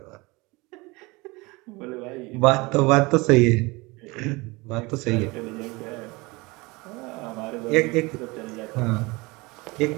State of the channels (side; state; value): left; quieter; 24.2 dB